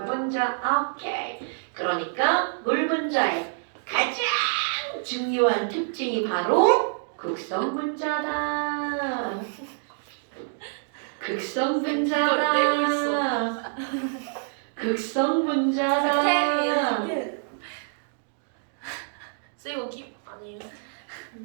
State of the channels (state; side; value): silent; left; digital silence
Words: 분자. 오케이. 그러니까 물 분자의 가장 중요한 특징이 바로 극성 분자다. 극성 분자다. 극성 분자다. 쓰이고 아니에요.